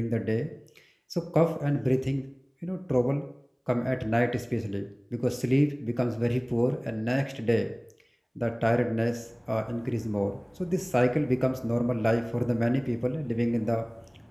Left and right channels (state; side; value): identical; both; correlation 1.00